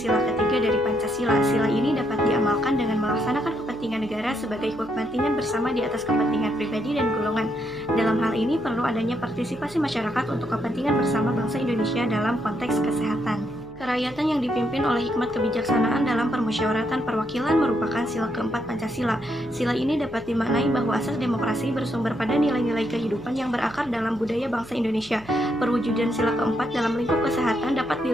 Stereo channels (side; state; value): right; noise; hum, 21 dB below the sound